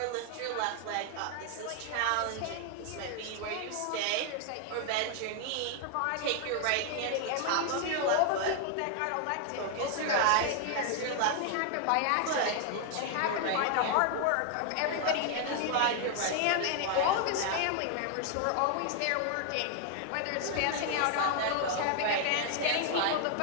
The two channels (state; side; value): different; both; correlation 0.00